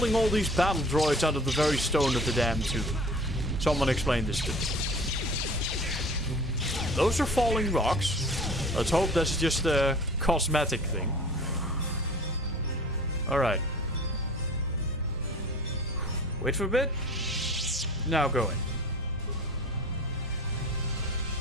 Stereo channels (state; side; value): normal; both; correlation 0.43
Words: all these battle droids out of the very stone of the damn tomb. Someone explain this to me. Those are falling rocks. Let's hope that's just a cosmetic thing. Alright. Wait for a bit. Now go in.